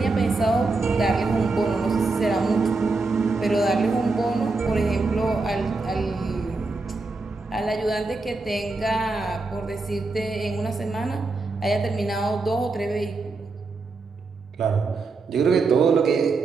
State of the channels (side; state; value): left; quieter; 3.7 dB